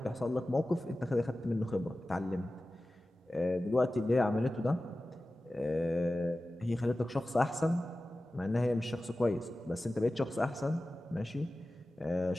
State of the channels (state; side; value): normal; both; correlation 0.95